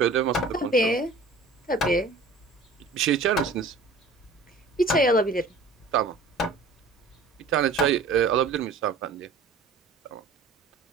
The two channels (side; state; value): left; quieter; 3.6 dB